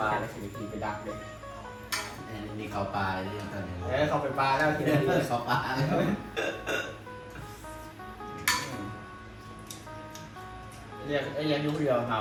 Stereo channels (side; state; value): both; identical; correlation 1.00